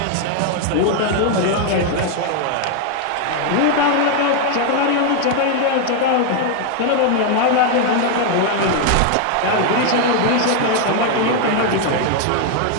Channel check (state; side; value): different; both; correlation 0.00